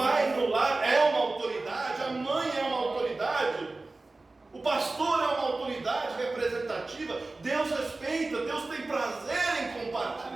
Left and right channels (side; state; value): left; quieter; 3.3 dB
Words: no lar é uma autoridade, a mãe é uma autoridade, o pastor é uma autoridade representativa. Deus respeita, Deus tem prazer em